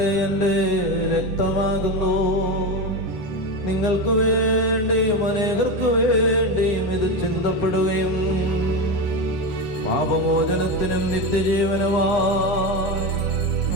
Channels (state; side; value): late; right; 9.6 ms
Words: എൻ്റെ രക്തമാകുന്നു. നിങ്ങൾക്ക് വേണ്ടിയും അനേകർക്ക് വേണ്ടിയും ഇത് ചിന്തപ്പെടുകയും പാപമോചനത്തിനും നിത്യജീവനുമായി